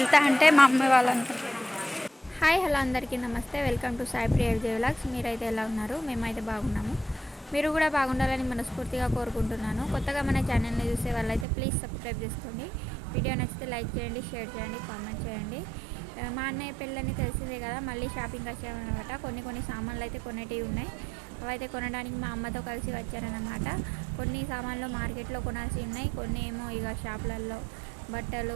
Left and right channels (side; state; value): left; drops out; at 11.5 s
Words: అంటే మా అమ్మ వాళ్ళు అంటారు. హాయ్ హలో అందరికీ నమస్తే. Welcome to Sai Priya vlogs. మీరైతే ఎలా ఉన్నారు? మేమైతే బాగున్నాము. మీరు కూడా బాగుండాలని మనస్ఫూర్తిగా కోరుకుంటున్నాను. కొత్తగా మన ఛానల్ని చూసే వాళ్ళైతే ప్లీజ్ సబ్స్క్రైబ్ చేసుకోండి. వీడియో నచ్చితే లైక్ చేయండి, షేర్ చేయండి, కామెంట్ చేయండి. మా అన్నయ్య పెళ్ళని తెలిసిందే కదా, మళ్ళీ షాపింగ్ వచ్చామన్నమాట. కొన్ని సామాన్లు అయితే కొనేటివి ఉన్నాయి. అవైతే కొనడానికి మా అమ్మతో కలిసి వచ్చారన్నమాట. కొన్ని సామాన్లు మార్కెట్లో కొనాల్సి ఉన్నాయి, కొన్ని ఏమో ఇక షాపులలో